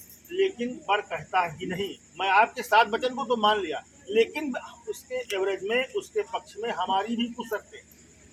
लेकिन वर कहता है कि नहीं, मैं आपके 7 वचन को तो मान लिया, लेकिन उसके एवरेज में उसके पक्ष में हमारी भी कुछ शर्तें,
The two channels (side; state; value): both; identical; correlation 1.00